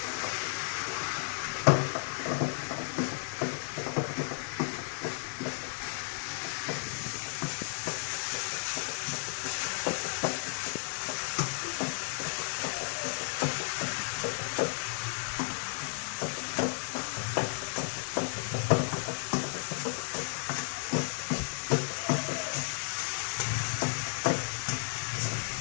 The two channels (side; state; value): right; silent; 56 dB below the other